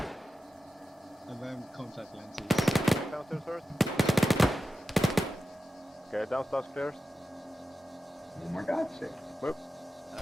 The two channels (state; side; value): normal; both; correlation 0.92